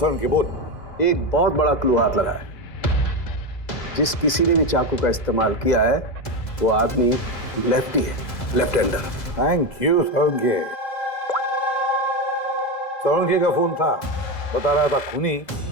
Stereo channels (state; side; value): late; right; 2.0 ms